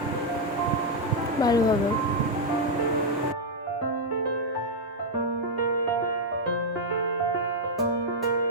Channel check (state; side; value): normal; both; correlation -0.02